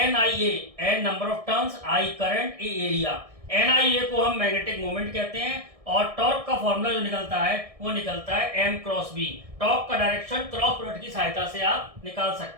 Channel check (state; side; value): late; left; 1.6 ms